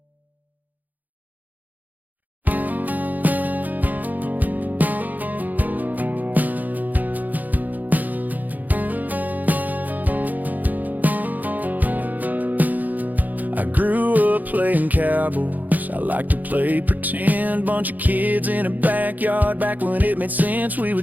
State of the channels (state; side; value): late; left; 0.082 ms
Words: I grew up playing cowboys, I like to play pretend. Bunch of kids in a backyard, back when it made sense. We